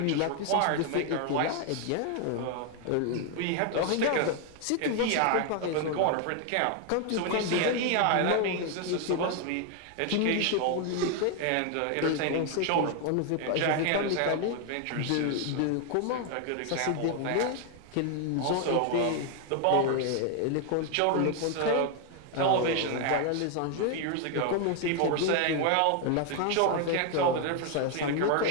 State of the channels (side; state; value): both; different; correlation 0.01